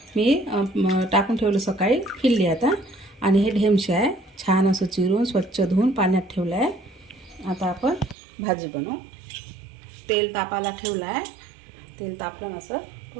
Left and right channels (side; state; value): left; drops out; at 8.2 s